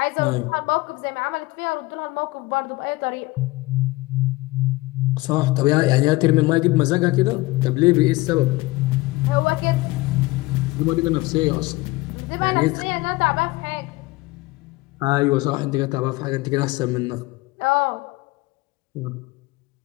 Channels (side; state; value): right; quieter; 21.1 dB